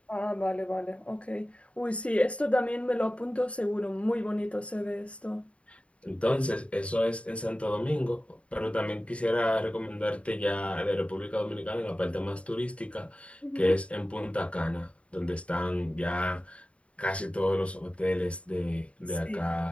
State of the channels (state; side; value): late; right; 0.062 ms